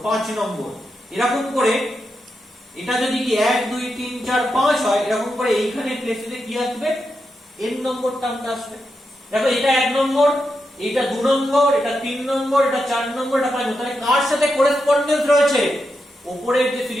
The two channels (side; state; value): both; normal; correlation 0.86